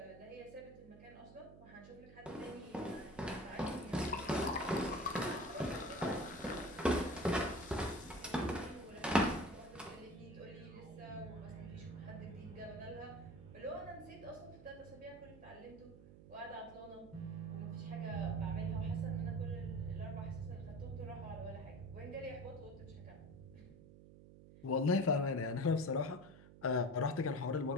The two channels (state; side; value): noise; right; hum, 18 dB below the sound